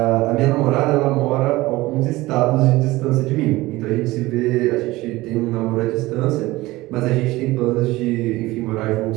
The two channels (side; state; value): left; quieter; 19.2 dB